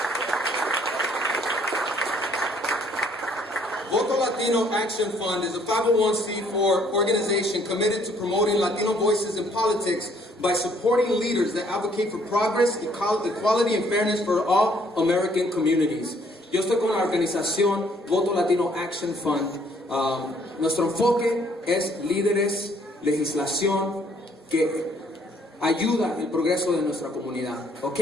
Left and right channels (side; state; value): both; normal; correlation 0.63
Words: Latino Action Fund is a 501c4 organization committed to promoting Latino voices in politics by supporting leaders that advocate for progress, equality, and fairness for all American communities. Yo estoy con la organización Voto Latino Action Fund. Nuestro enfoque es líderes, legislación que ayuda el progreso de nuestra comunidad.